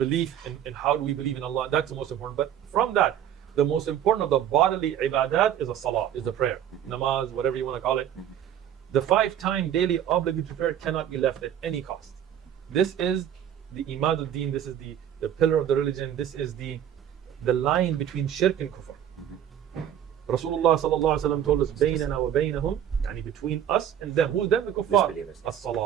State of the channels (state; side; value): quieter; left; 10.1 dB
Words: in how do we believe in Allah, that's the most important. But from that, the most important of the bodily ibadat is a salah, is the prayer, namaz, whatever you want to call it. The 5-time daily obligatory prayer cannot be left at any cost. This is the imad al-deen, this is the pillar of the religion, this is the line between shirk and kufr. Rasulullah sallallahu alaihi wasallam told us, "Baynana wa baynahum," yani between us and them. Who's them? The kuffar.